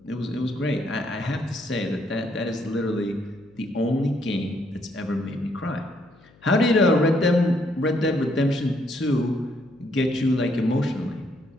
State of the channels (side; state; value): left; noise; hum, 29 dB below the sound